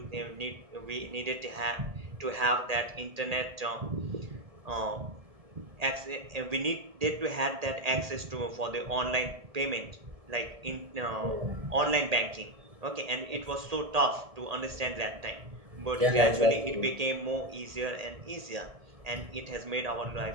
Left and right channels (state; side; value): late; left; 1.8 ms